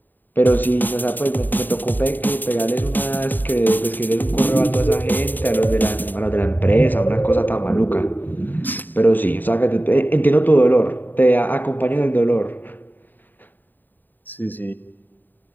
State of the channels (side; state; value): right; late; 0.089 ms